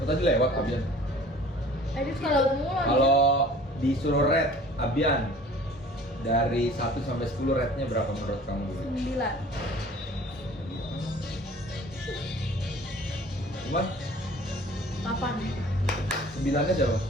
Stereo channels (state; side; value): normal; both; correlation 0.48